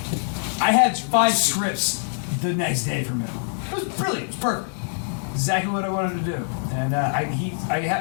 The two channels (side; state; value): right; silent; 63 dB below the other